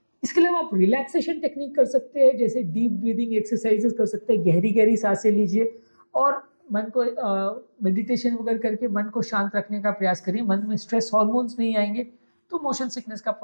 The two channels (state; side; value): inverted; both; correlation -1.00